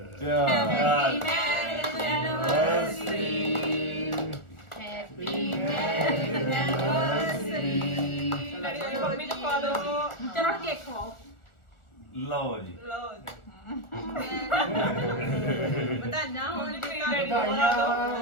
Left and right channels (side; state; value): right; late; 1.4 ms